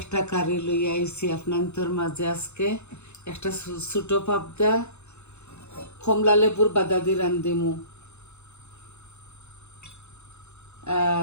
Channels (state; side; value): late; right; 0.82 ms